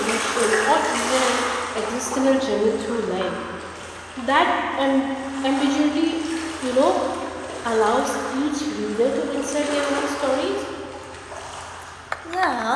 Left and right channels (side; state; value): both; identical; correlation 1.00